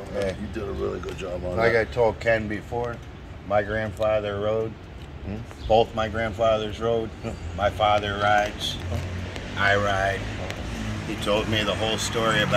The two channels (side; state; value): both; identical; correlation 1.00